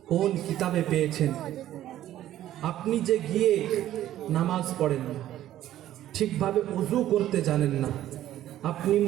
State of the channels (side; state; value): left; quieter; 12.9 dB